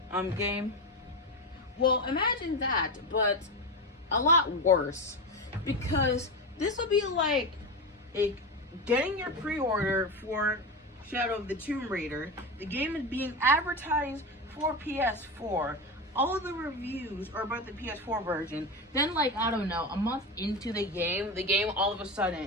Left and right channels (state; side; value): normal; both; correlation 0.19